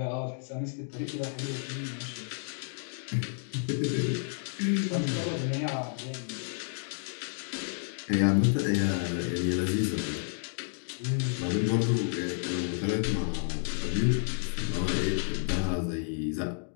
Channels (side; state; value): right; silent; digital silence